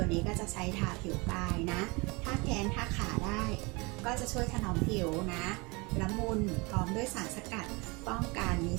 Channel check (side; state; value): left; quieter; 26.9 dB